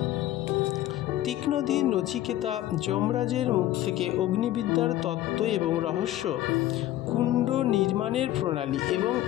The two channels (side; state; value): right; quieter; 14.0 dB